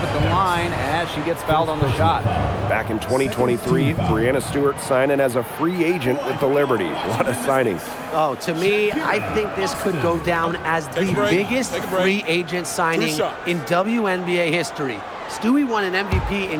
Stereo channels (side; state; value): both; identical; correlation 1.00